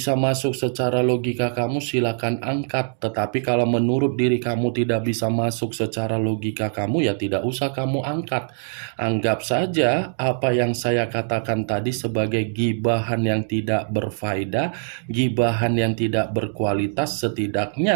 masuk secara logika kamu, silakan angkat. Tetapi kalau menurut diri kamu tidak bisa masuk secara logika kamu, ya tidak usah kamu angkat. Anggap saja apa yang saya katakan tadi sebagai gibahan yang tidak berfaedah, gibahan yang tidak berkualitas.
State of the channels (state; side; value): silent; left; digital silence